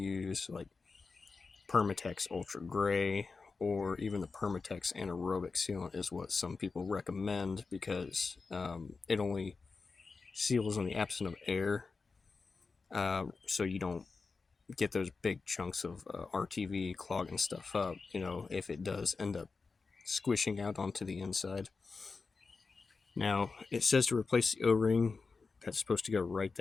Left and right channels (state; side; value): quieter; right; 4.4 dB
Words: like Permatex Ultra Gray, or even the Permatex Anaerobic Sealant is what some people recommend, because it only seals in the absence of air, so you don't get those big chunks of RTV clogging stuff up, if it does end up squishing out onto the inside. Now, it says to replace the O-ring. That's supposed to go right